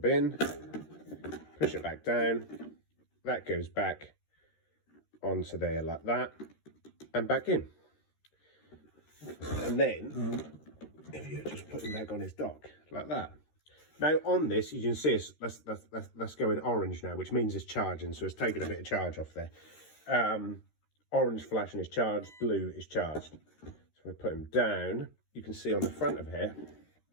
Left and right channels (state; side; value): late; right; 13 ms